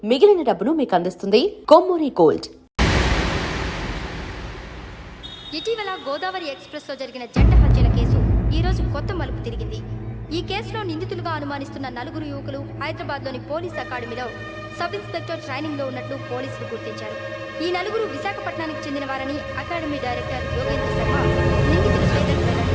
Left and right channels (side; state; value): both; identical; correlation 1.00